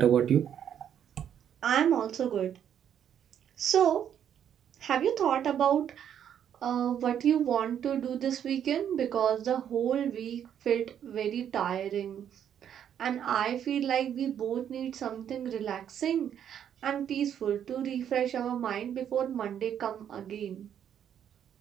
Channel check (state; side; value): quieter; left; 9.3 dB